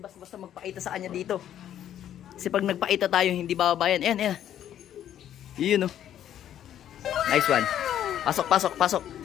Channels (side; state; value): right; quieter; 10.8 dB